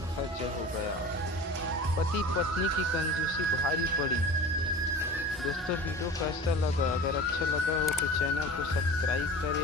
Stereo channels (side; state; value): both; normal; correlation 0.37